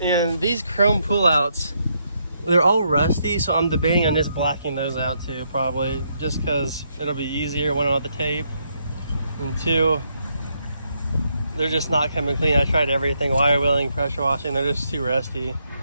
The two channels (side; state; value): both; inverted; correlation -0.76